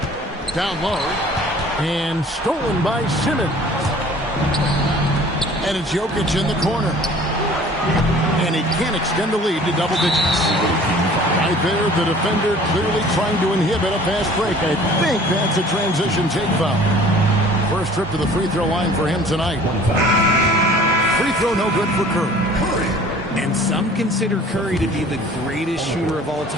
Down low. And stolen by Simmons. And it's Jokic in the corner. And he can't extend the lead to double digits. Right there, the defender clearly trying to inhibit a fast break. I think that's a transition take foul. First trip to the free throw line for him tonight. Free throw no good for Curry. And some consider Curry to be the greatest shooter of all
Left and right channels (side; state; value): both; normal; correlation 0.49